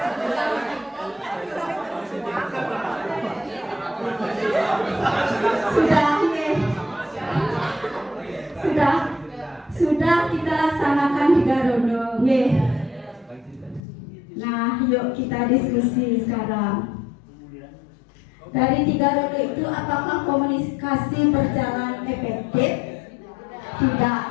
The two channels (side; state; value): right; drops out; at 13.8 s